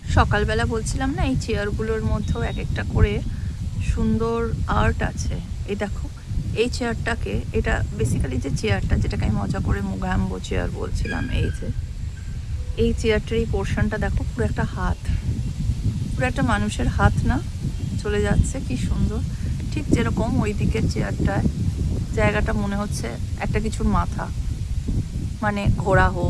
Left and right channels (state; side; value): identical; both; correlation 1.00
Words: সকালবেলা বলছিলাম না, এই চেয়ারগুলোর মধ্যেও এক একটা করে সুন্দর আর্ট আছে। এই দেখো, এই চেয়ারটাকে, এটা বেসিক্যালি যে চেয়ারটা, যেটাকে আমি মজা করে মুঘাম্বো চেয়ার বলছিলাম, এই চেয়ারটার এই পোর্শনটা দেখো, পুরো একটা হাত, পুরো একটা মানুষের হাত না চলে যাচ্ছে, কি সুন্দর। ঠিক যেরকম ওই দিকের চেয়ারটায় জায়গাটা মনে হচ্ছে একটা কিছুর মাথা, মানে ঘোড়া